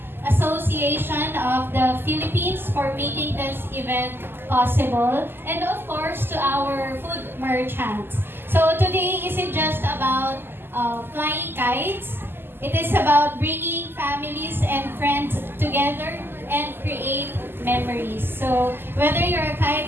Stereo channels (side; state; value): left; late; 0.10 ms